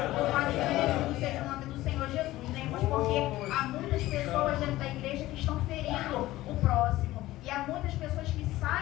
Louvado e agradecido seja o nome do Senhor Jesus, né, irmãos, porque há muitas pessoas dentro da igreja que estão ferindo o próximo. E há muitas pessoas que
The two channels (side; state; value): right; quieter; 16.6 dB